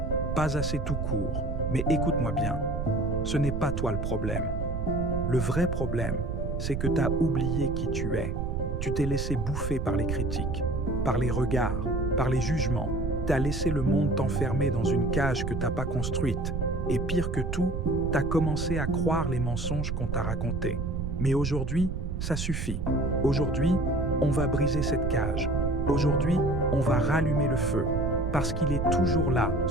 pas assez tout court. Mais écoute-moi bien, ce n'est pas toi le problème. Le vrai problème, c'est que t'as oublié qui tu es. Tu t'es laissé bouffer par les critiques, par les regards, par les jugements. T'as laissé le monde t'enfermer dans une cage que t'as pas construite. Et pire que tout, t'as commencé à croire les mensonges qu'on t'a racontés. Mais aujourd'hui, ça suffit. Aujourd'hui, on va briser cette cage. Aujourd'hui, on va rallumer le feu. Parce qu'il est toujours là,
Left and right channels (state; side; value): noise; right; rumble, 2 dB below the sound